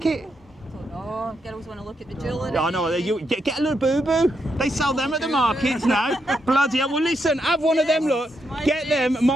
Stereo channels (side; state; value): both; normal; correlation 0.81